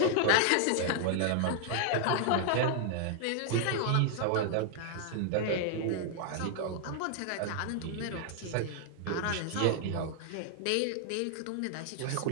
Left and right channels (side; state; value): both; different; correlation 0.00